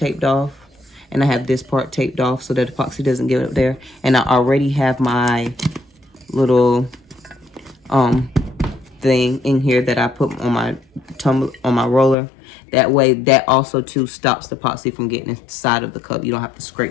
off and I have this part taped off so that epoxy doesn't get up there. And I already have my little thing in here that I put on my tumbler, on my roller. That way, that also too stops the epoxy from getting inside of the cup. You don't have to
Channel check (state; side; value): drops out; right; at 12.2 s